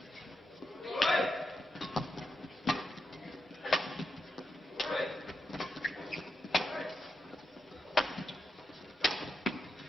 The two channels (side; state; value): both; normal; correlation 0.86